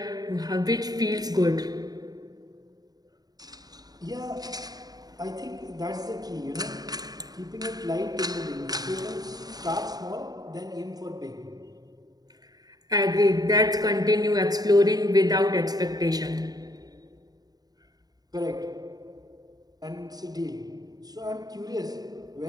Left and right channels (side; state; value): left; late; 0.19 ms